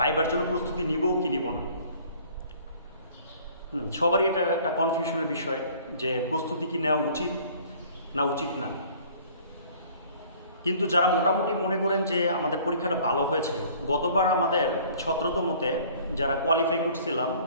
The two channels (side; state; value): both; inverted; correlation -0.53